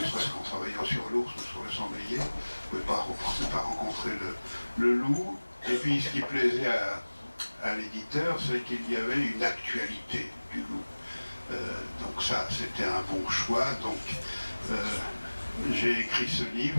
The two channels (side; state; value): both; inverted; correlation -1.00